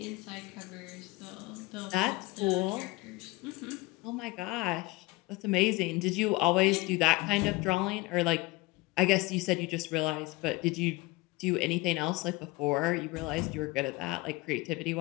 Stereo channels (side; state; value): right; quieter; 22.0 dB